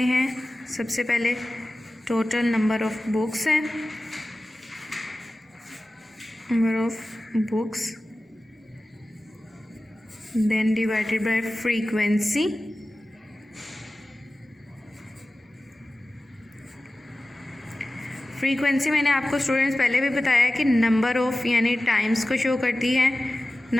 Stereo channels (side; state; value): both; normal; correlation 0.95